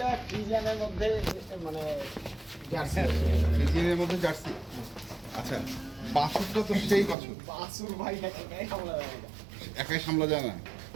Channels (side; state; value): left; drops out; at 7.2 s